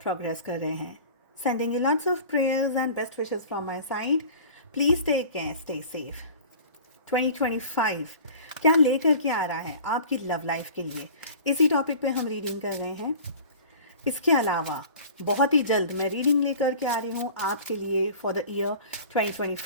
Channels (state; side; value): inverted; both; correlation -0.42